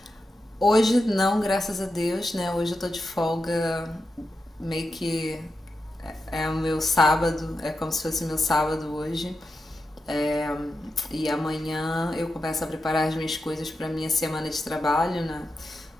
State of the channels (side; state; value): both; normal; correlation 0.89